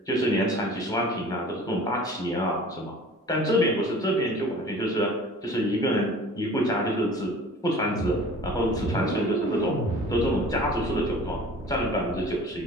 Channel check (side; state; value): both; normal; correlation 0.45